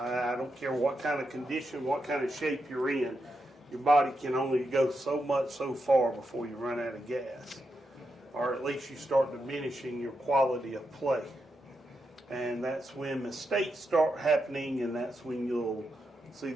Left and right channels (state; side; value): normal; both; correlation 0.85